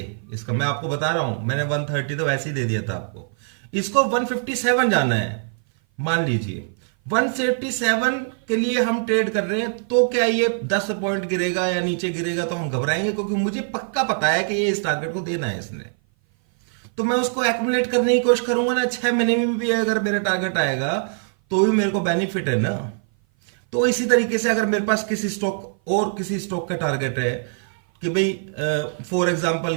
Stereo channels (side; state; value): left; silent; 57 dB below the other